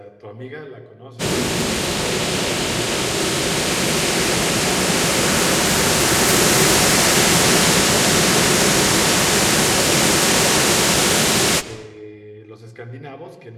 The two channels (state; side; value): identical; both; correlation 1.00